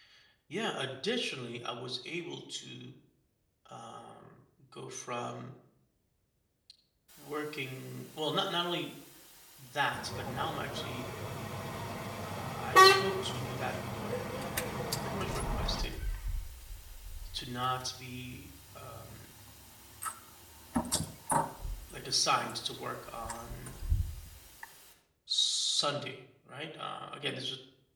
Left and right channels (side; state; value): both; identical; correlation 1.00